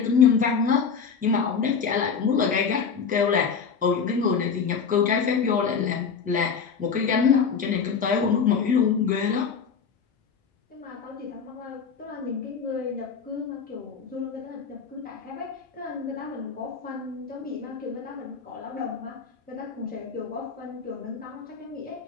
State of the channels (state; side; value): quieter; right; 6.1 dB